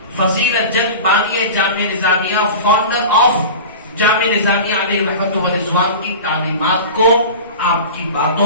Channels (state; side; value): inverted; both; correlation -0.33